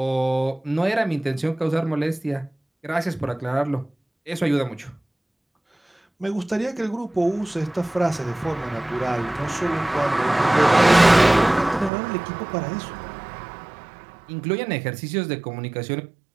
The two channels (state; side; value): drops out; left; at 11.9 s